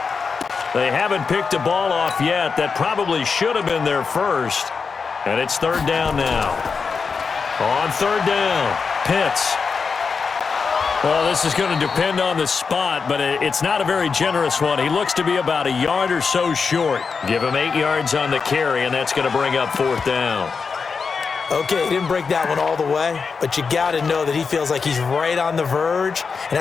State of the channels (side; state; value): right; quieter; 5.3 dB